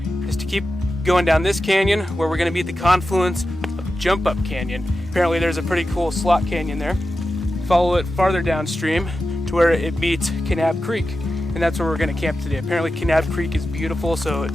is to keep going down this canyon where we're going to be at the confluence of Jump Up Canyon. Apparently there's a pretty cool slot canyon there. Follow it farther downstream to where it meets Kanab Creek, and that's where we're going to camp today. Apparently Kanab Creek is beautiful, so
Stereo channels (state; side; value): normal; both; correlation 0.92